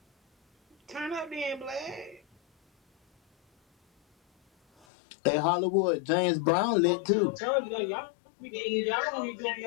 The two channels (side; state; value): right; drops out; at 4.9 s